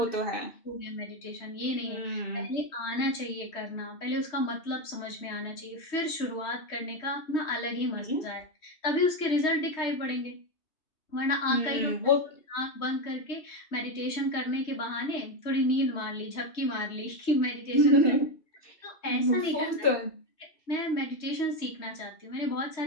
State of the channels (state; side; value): late; right; 3.2 ms